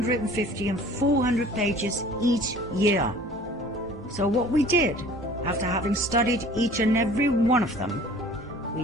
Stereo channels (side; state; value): both; normal; correlation 0.48